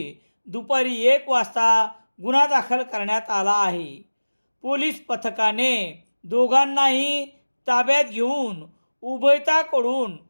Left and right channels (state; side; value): inverted; both; correlation -1.00